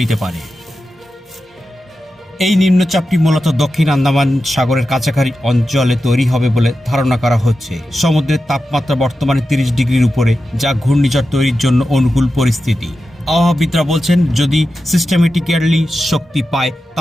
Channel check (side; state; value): both; normal; correlation 0.91